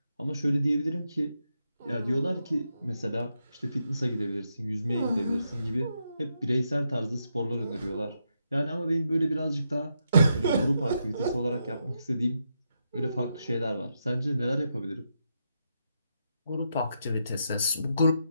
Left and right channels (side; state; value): both; inverted; correlation -0.82